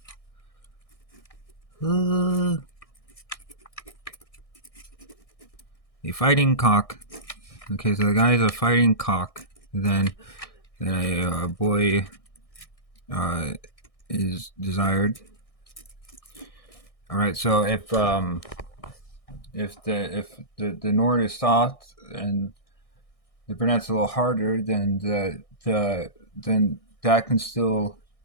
fighting cock. Okay, so the guy is a fighting cock. Then a boy is desired. All right, so if the Nord is soft and the brunette's a little harder, then then that can still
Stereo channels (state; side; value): late; right; 1.6 ms